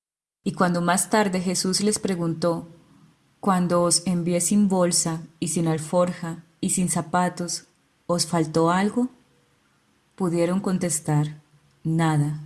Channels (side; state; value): both; identical; correlation 1.00